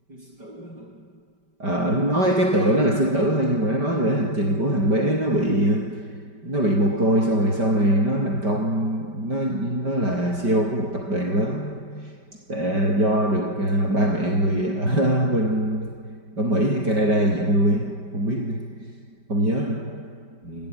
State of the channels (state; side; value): late; left; 5.1 ms